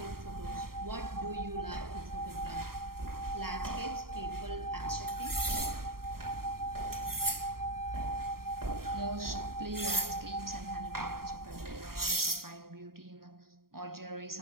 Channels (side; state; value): left; late; 0.93 ms